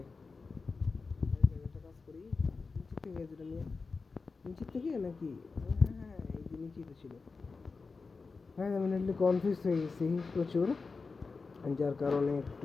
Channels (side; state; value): right; quieter; 4.4 dB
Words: একটা কাজ করি নিচে থেকে যেটা নিয়ে নিচে থেকে নাকি হ্যাঁ এই যে নিচেই তো ছিল হ্যাঁ আমি নেটলি কনফিউজ হয়ে গেছি প্রচুর যার কারণে